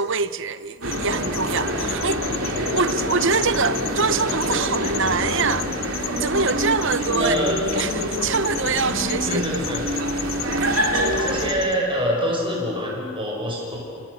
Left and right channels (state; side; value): normal; both; correlation 0.02